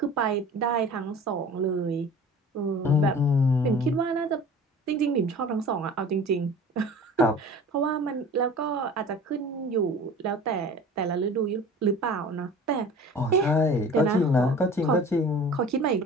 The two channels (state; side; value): normal; both; correlation 0.42